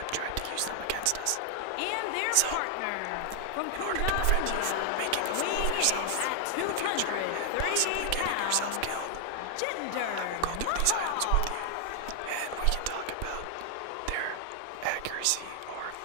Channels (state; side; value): different; both; correlation 0.00